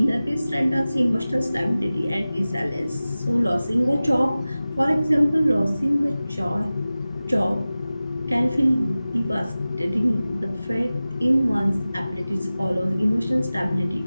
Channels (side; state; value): both; inverted; correlation -0.96